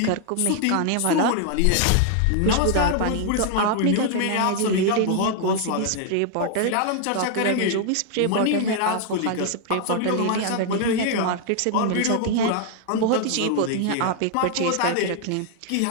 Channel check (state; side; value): different; both; correlation 0.00